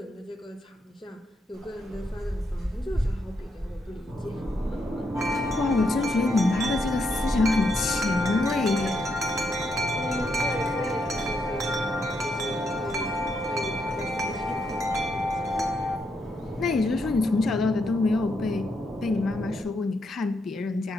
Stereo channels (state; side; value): normal; both; correlation 0.79